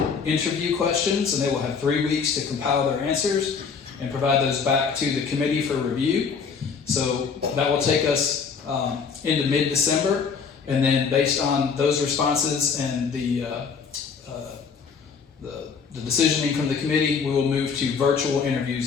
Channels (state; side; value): quieter; right; 5.9 dB